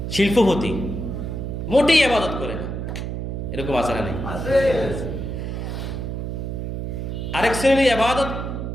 শিল্পপতি, মোটেই ইবাদত করে না। এরকম আছে না? নেই? আরেক শ্রেণী ইবাদত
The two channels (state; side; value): noise; right; hum, 4 dB below the sound